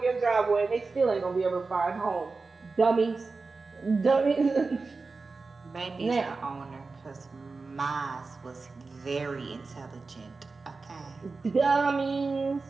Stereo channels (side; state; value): left; quieter; 4.0 dB